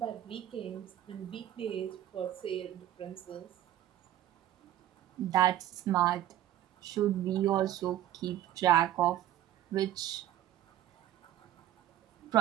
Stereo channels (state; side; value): quieter; left; 12.7 dB